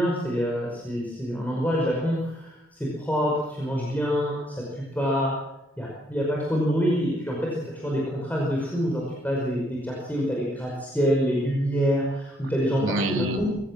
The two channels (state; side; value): normal; both; correlation 0.70